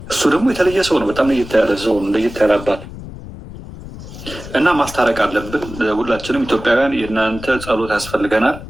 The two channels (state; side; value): noise; left; rumble, 13 dB below the sound